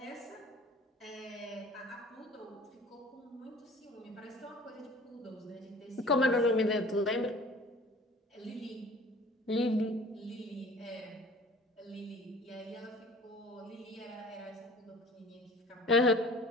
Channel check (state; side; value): normal; both; correlation 0.47